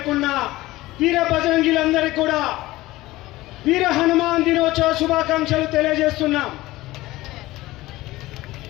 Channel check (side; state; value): right; quieter; 18.1 dB